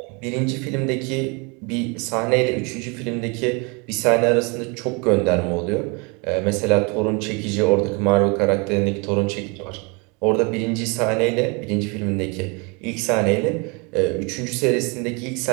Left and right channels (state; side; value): quieter; left; 30.8 dB